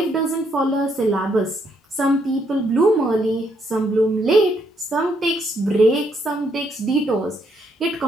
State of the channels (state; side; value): normal; both; correlation 0.73